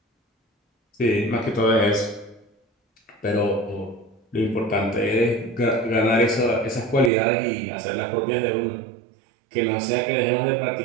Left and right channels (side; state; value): left; drops out; at 7.1 s